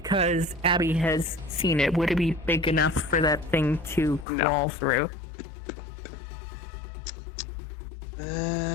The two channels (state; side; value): drops out; right; at 4.2 s